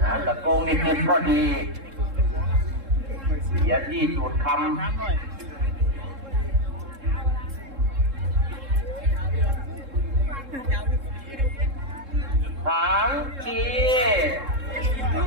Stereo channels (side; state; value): left; late; 3.7 ms